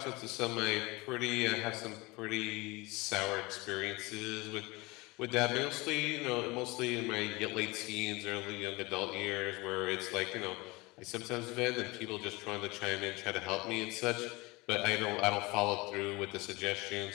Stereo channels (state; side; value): quieter; right; 23.6 dB